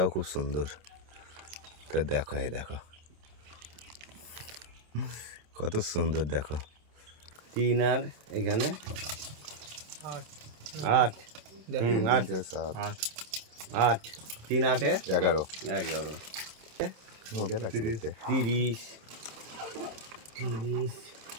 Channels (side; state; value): left; late; 27 ms